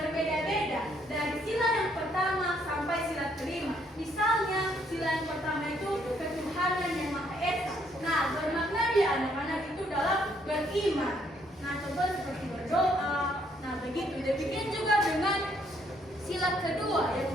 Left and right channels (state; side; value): normal; both; correlation 0.69